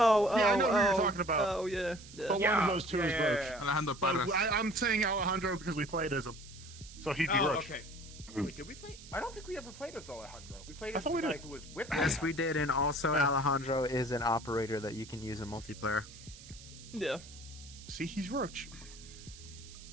Yeah, I know who you're oh. talking about. Oh, yeah. Yeah. But one of those two is Roach. Alejandro But Parras. I'm saying Alejandro because we played as him, so he'd be Oh, Roach. okay. Wait, did we play? I don't think we ever played as Alejandro. We played I as thought the we guy did. who was with Yes, we Alejandro. did, and also Yeah. Alejandro is an operator that you can use in multiplayer. Yeah. See, he's Roach.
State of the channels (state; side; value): noise; right; hiss, 18 dB below the sound